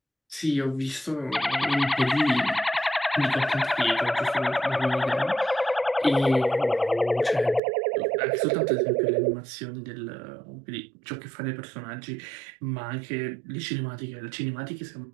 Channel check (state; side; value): drops out; left; at 7.6 s